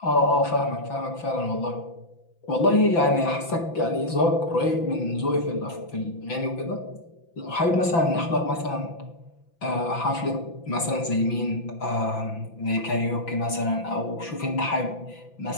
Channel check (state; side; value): late; right; 5.9 ms